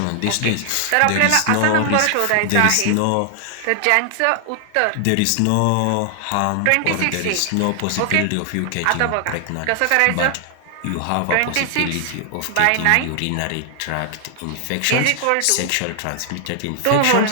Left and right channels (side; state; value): both; different; correlation 0.00